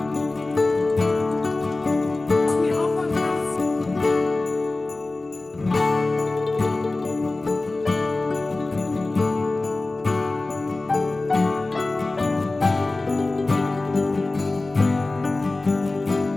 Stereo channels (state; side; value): quieter; right; 3.2 dB